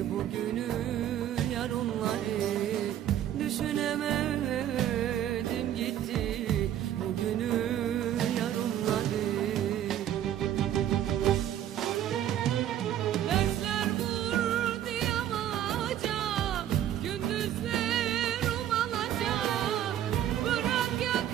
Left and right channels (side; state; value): left; quieter; 11.2 dB